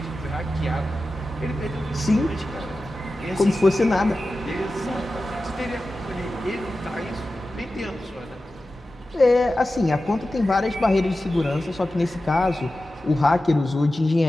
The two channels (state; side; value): normal; both; correlation 0.94